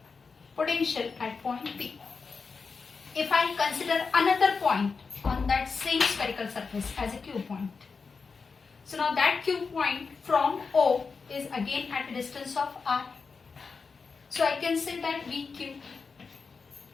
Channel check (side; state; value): right; quieter; 4.9 dB